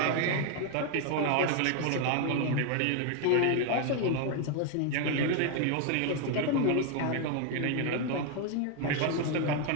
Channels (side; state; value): both; different; correlation 0.01